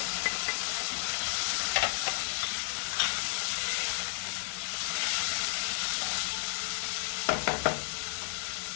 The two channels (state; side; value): silent; right; digital silence